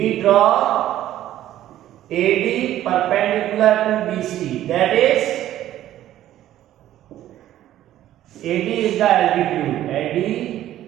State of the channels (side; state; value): left; quieter; 12.9 dB